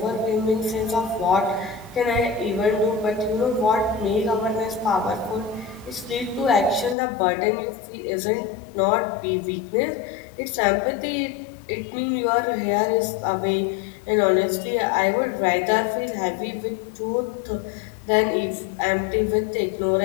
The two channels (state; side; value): drops out; right; at 7.0 s